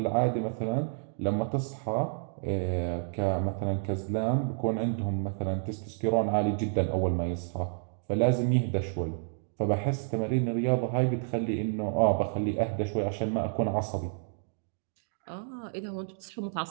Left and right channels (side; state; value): left; silent; digital silence